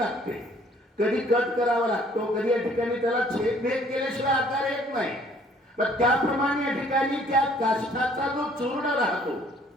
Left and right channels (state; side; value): normal; both; correlation 0.59